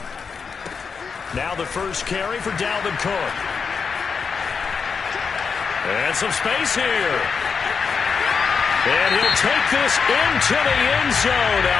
Now the first carry for Dalvin Cook. And some space here. And he'll take this into the end zone.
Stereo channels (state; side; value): quieter; right; 5.7 dB